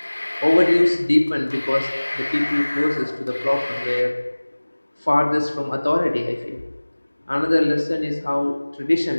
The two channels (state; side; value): inverted; both; correlation -1.00